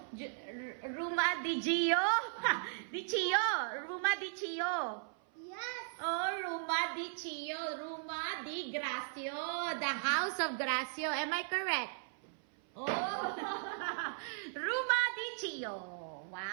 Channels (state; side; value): silent; left; 53 dB below the other